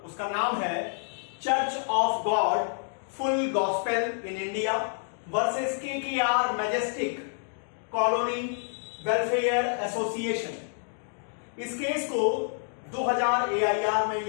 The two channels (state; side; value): silent; right; 59 dB below the other